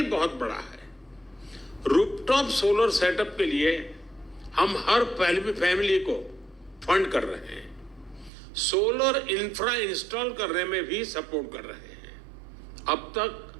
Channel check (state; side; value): drops out; left; at 8.3 s